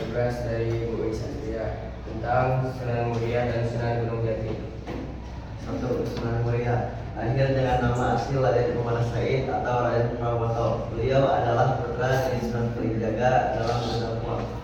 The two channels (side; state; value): both; identical; correlation 1.00